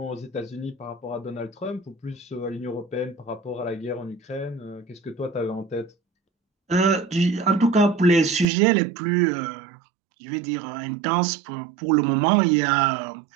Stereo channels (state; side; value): drops out; left; at 8.5 s